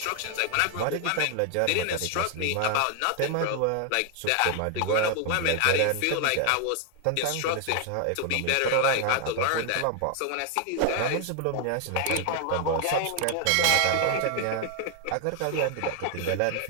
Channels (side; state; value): both; different; correlation 0.00